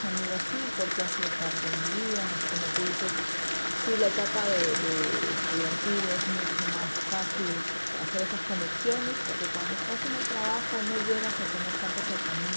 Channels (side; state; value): both; inverted; correlation -1.00